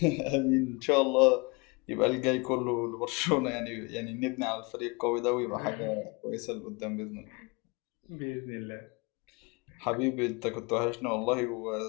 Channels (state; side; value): quieter; right; 28.2 dB